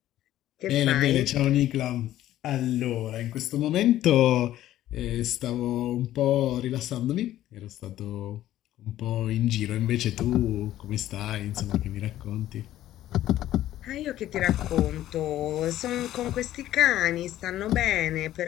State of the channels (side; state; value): right; quieter; 13.4 dB